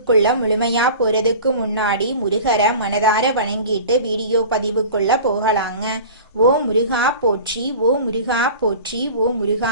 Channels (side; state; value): both; inverted; correlation -0.39